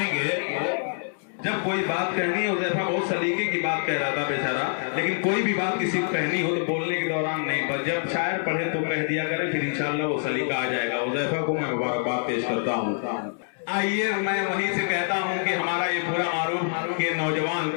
जब कोई बात कहनी हो, जैसा बहुत सलीके की बात कह रहा था बेचारा, लेकिन कोई भी बात किसी को कहनी हो तो बोलने के दौरान नहीं, पर जब शायर पढ़े तो कह दिया करें, फिर इंशाल्लाह वो सलीका आ जाएगा। उज़ैफा को मैं मुबारकबाद पेश करता हूँ। आइए मैं वहीं से कहता हूँ कि हमारा ये पूरा मारूफ के नौजवान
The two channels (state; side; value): silent; right; digital silence